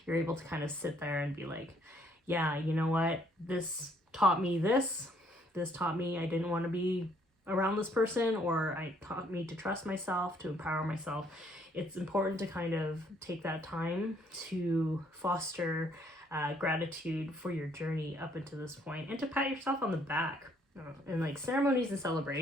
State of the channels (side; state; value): both; normal; correlation 0.66